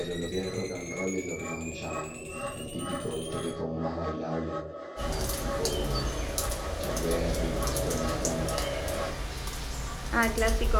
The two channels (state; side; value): identical; both; correlation 1.00